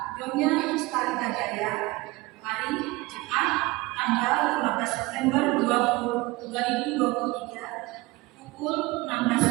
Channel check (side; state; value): left; quieter; 21.9 dB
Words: Nyonya Starita Jaya, hari Jumat, tanggal 15 September 2023, pukul